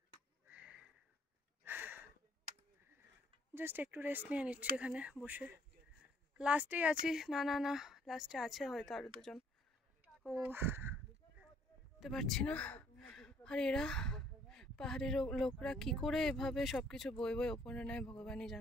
জাস্ট একটু রেস্ট নিয়ে নিচ্ছি এখানে বসে। লাস্টেই আছি, না না না লাস্টে আছে হয়তো আরো দুজন, ও বুঝতে পারছি না। আর এরা পাহাড়ের লোকরা কি করে এভাবে সবকিছু বই বই ওপরে নেয় ভগবানই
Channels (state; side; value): normal; both; correlation 0.63